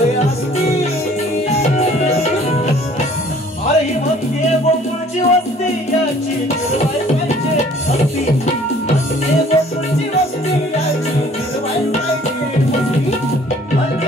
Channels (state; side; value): normal; both; correlation 0.55